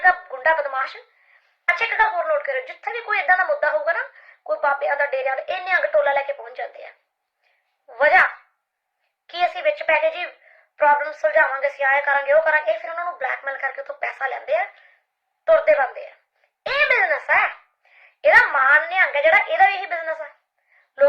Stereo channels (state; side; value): identical; both; correlation 1.00